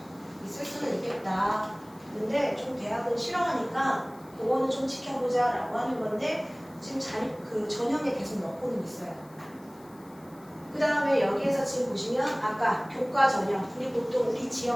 있을 수는 있겠다. 근데 좀 대학은 싫어하니까 그거는 좀 지켜보자 라고 하는 건데 지금 그 전형에 계속 넣고는 있어요. 그 다음에 여기에서 지금 보시면 아까 교과 전형 우리 보통 우리 지역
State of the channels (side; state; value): left; noise; hiss, 28 dB below the sound